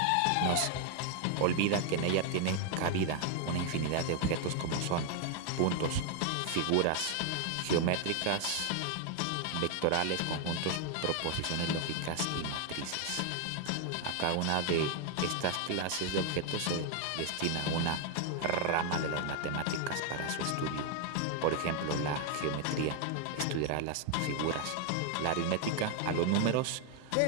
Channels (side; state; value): both; different; correlation 0.00